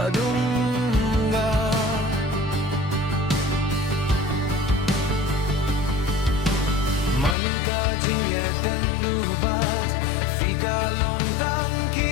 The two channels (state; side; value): drops out; right; at 7.4 s